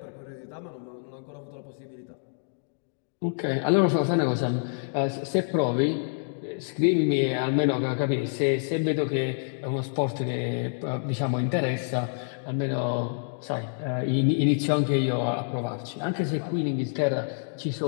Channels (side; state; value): right; silent; digital silence